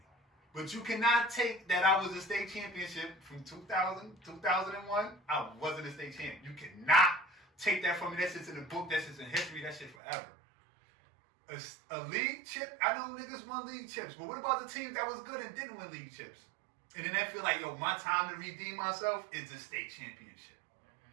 but you cannot take that I was a state championship from 2000, 2001. I wasn't a state champion. You cannot take that from me. That shit's in the book. That shit's in history. That shit forever. A league chip, I know niggas won league chips, but what about the teams that was good and didn't win league chips? And then they feel like, yo, my time to redeem myself is a state championship.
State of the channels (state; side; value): drops out; left; at 10.0 s